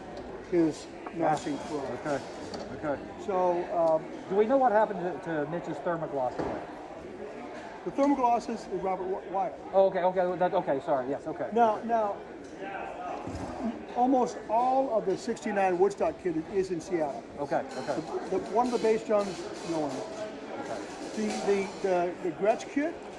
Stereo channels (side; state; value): both; identical; correlation 1.00